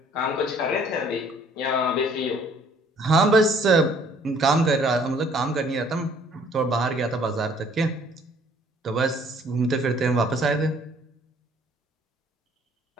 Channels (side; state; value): both; normal; correlation 0.59